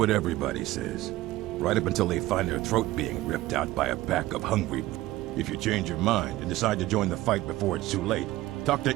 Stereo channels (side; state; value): left; quieter; 16.9 dB